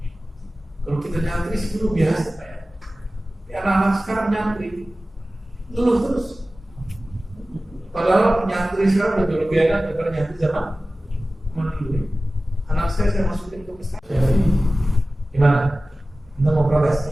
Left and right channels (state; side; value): normal; both; correlation 0.96